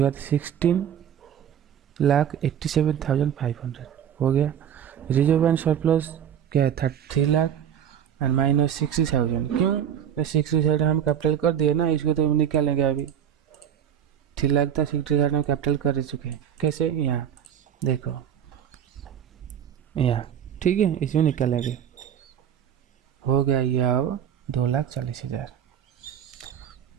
बाद 16,87,500 हो गया। रिजर्व एंड सरप्लस क्या है 3 लाख एंड माइनस 60,000। क्यों, 60,000 हम कैपिटल कर दिए ना, इसको तो हम निकालेंगे अभी। 3 लाख था, 60,000 हम कैपिटल कर चुके हैं। कैसे, यहाँ देखो यहाँ। ठीक है, इसमें निकालेंगे, हो गया ये अब 2,40,000।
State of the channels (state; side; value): quieter; left; 9.2 dB